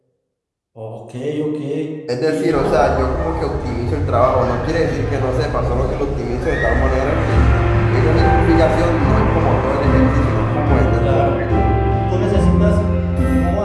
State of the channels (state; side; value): identical; both; correlation 1.00